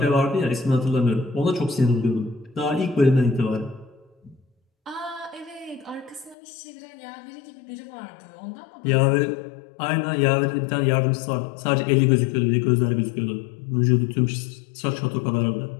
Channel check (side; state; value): right; drops out; at 6.4 s